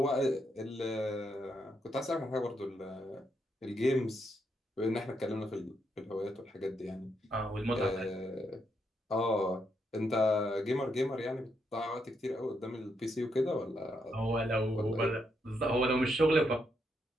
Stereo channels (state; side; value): normal; both; correlation 0.79